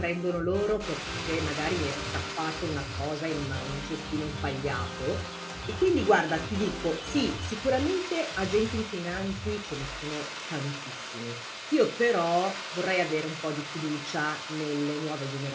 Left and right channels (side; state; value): both; identical; correlation 1.00